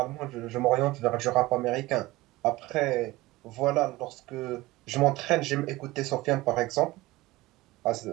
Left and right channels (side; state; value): left; quieter; 19.3 dB